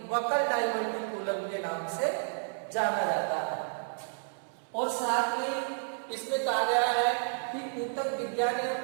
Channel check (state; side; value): silent; left; 57 dB below the other